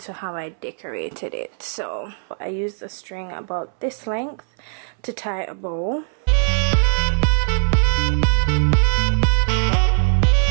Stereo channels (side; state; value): left; silent; 64 dB below the other